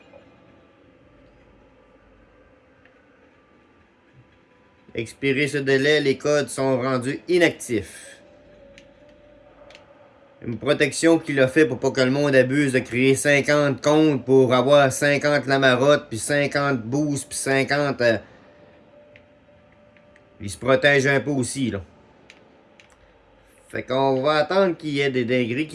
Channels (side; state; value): both; identical; correlation 1.00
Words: Expiré ce délai, les codes sont rendus inactifs. Une protection qu'il a fait pour pas que le monde abuse de créer 50 comptes pour avoir 50 Lamarotte, puis 50 Boost, puis 50... il se protège un peu aussi, là. Fait qu'on va attendre qu'il y ait des dingueries